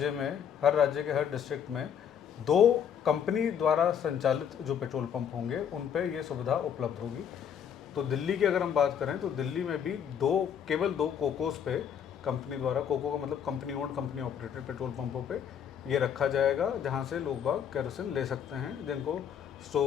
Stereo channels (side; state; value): right; quieter; 8.3 dB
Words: राज्य के हर डिस्ट्रिक्ट में 2 कंपनी द्वारा संचालित जो पेट्रोल पंप होंगे उन पे ये सुविधा उपलब्ध होगी। तो दिल्ली की अगर हम बात करें तो दिल्ली में भी केवल 2 कोकोस पे कंपनी द्वारा, कोको का मतलब company owned company operated petrol पंपों पे ये रखा जाएगा, जहां से लोग बाग केरोसिन ले सकते हैं जिनको